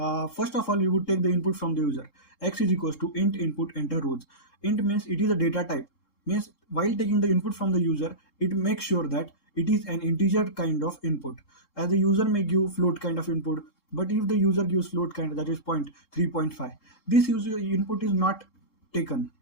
First of all, you would take the input from the user. X is equals to int input enter rows. Int means it is a data type, means while taking the input from the user it makes sure that it is an integer kind of input, as the user may give float kind of input. But if the user gives float kind, that is 0.3.5, this user input is not taken.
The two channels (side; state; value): right; late; 3.7 ms